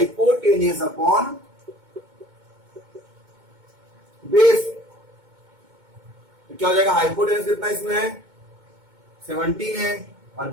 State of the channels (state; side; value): late; left; 2.2 ms